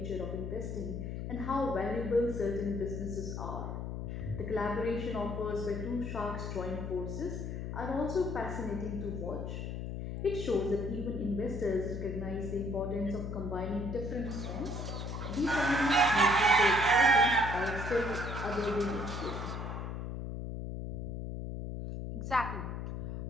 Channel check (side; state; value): left; noise; hum, 5 dB below the sound